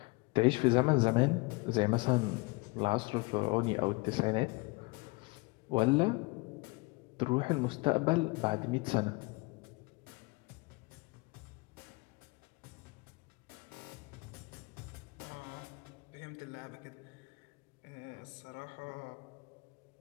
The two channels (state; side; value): quieter; right; 25.9 dB